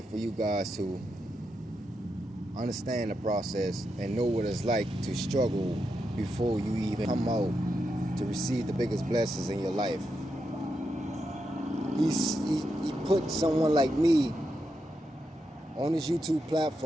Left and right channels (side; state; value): both; normal; correlation 0.85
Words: for you guys to understand the process and know what it's like to struggle before you even come out to receive the biggest blessings in your life. He put someone like me on this YouTube